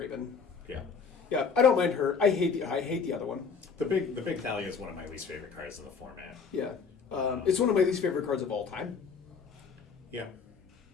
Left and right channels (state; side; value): quieter; right; 5.6 dB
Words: Yeah. Yeah, I don't mind her. I hate the other one. The big Thalia is one of my least favorite cards in the format. Yeah, it's one of my least favorite cards of all time. Yeah,